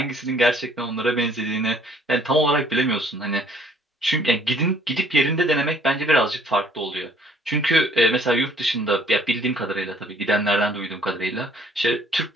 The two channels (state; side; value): normal; both; correlation 0.60